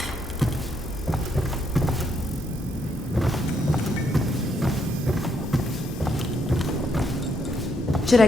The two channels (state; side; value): normal; both; correlation 0.75